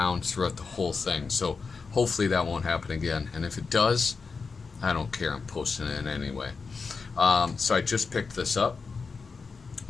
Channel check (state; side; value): quieter; right; 4.8 dB